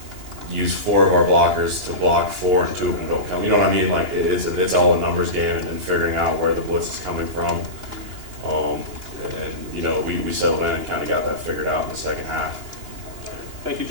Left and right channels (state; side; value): late; left; 2.9 ms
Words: use 4 of our blockers to block 4 and 2 of them don't come. You know what I mean? Like, it's all a numbers game and figuring out where the blitz is coming from. And you know, we settled in and kind of got that figured out in the second half. Thank you,